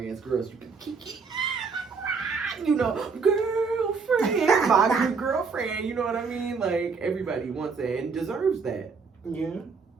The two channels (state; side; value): quieter; left; 5.1 dB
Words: girls you can kiki, you know, girlfriend, my good girlfriend. You know what I mean? Like everybody wants that and deserves that. Yeah.